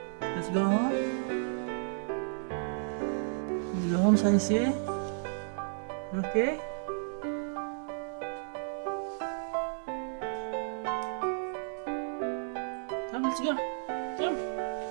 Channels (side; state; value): left; silent; digital silence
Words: Let's go home. Let's go home, Saisi. Okay? Come, let's go. Come.